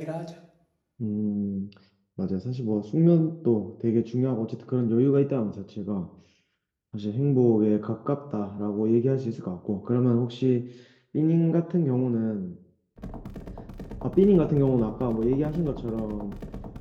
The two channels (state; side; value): identical; both; correlation 1.00